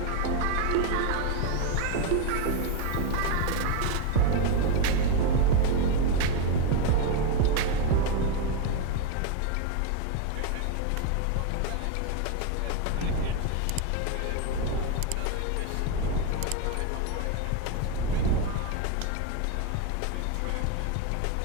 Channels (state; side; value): different; both; correlation 0.02